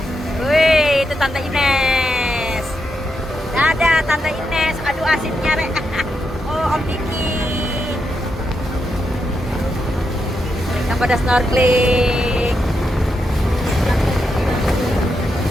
Wih, itu Tante Ines. Dadah Tante Ines. Aduh asiknya rek. Oh Om Diki. Kita pada snorkeling.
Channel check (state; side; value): normal; both; correlation 0.84